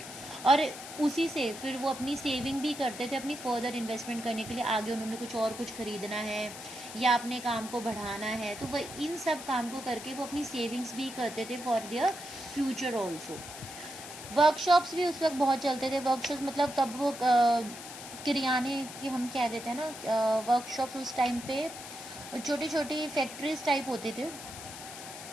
और उसी से फिर वो अपनी सेविंग भी करते थे अपनी फर्दर इन्वेस्टमेंट करने के लिए, आगे उन्होंने कुछ खरीदना है या अपने काम को बढ़ाना है, तो वह इन सब काम को करके वो अपनी सेविंग्स भी करते थे for their future also. Workshops भी उस वक्त बहुत चलते थे। वर्कशॉप्स मतलब तब वो किराने की हम कह देते हैं ना, वर्कशॉप्स उस टाइम पे छोटी छोटी फैक्ट्रीज टाइप होते थे,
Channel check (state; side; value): noise; left; hiss, 12 dB below the sound